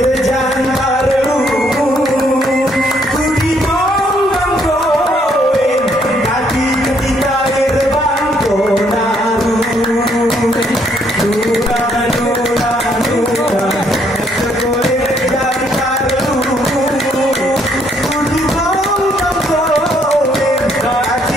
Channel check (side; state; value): both; normal; correlation 0.69